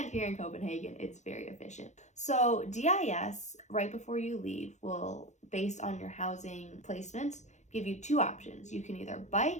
here in Copenhagen, it's very efficient. So DIS, right before you leave, will, based on your housing placement, give you two options. You can either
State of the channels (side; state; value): right; late; 0.34 ms